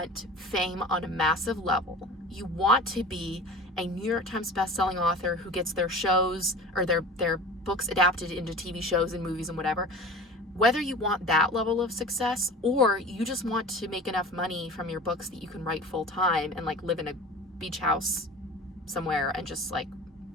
fame on a massive level, you want to be a New York Times bestselling author who gets their shows or their books adapted into TV shows and movies and whatever, whether you want that level of success, or you just want to make enough money from your books that you can write full time and like live in a beach house somewhere and just like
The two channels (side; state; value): both; normal; correlation 0.37